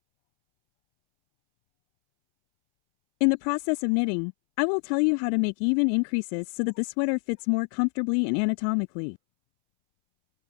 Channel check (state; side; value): silent; right; 61 dB below the other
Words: In the process of knitting, I will tell you how to make even increases so that the sweater fits more comfortably and anatomically.